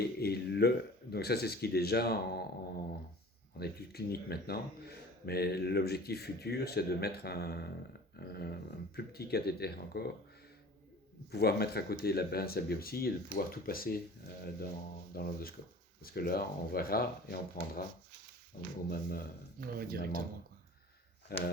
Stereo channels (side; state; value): both; normal; correlation 0.43